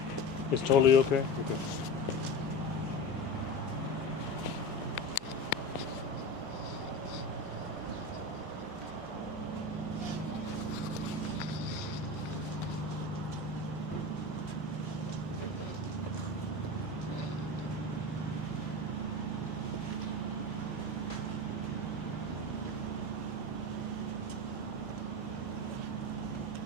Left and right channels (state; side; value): normal; both; correlation 0.27